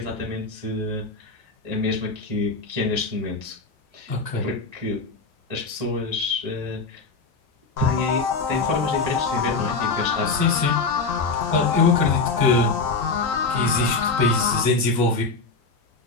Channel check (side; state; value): right; quieter; 4.1 dB